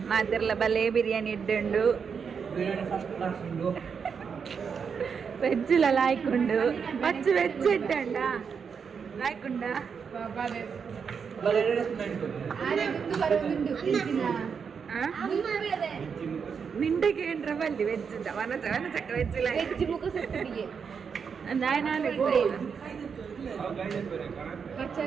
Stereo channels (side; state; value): left; quieter; 6.3 dB